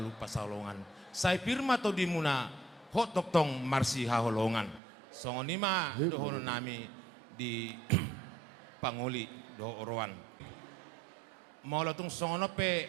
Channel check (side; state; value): left; drops out; at 4.8 s